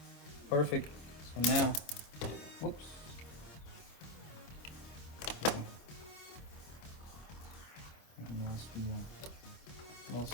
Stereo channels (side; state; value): right; late; 26 ms